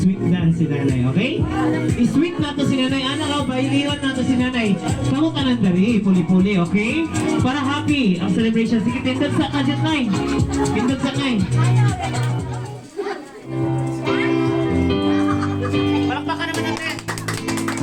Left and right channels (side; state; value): both; identical; correlation 1.00